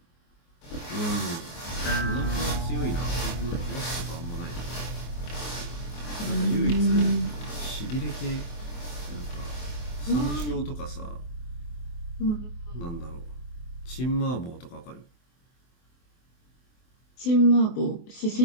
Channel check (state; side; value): late; right; 24 ms